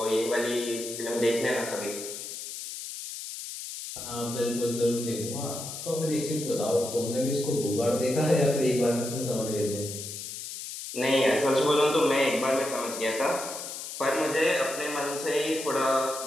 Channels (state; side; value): noise; left; hiss, 8 dB below the sound